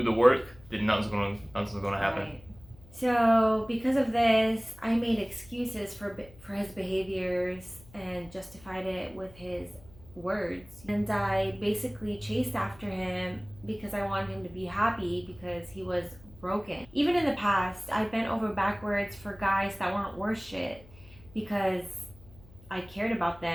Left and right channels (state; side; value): noise; left; hum, 23 dB below the sound